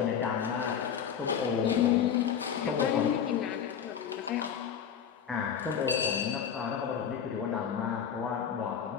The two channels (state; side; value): quieter; right; 8.0 dB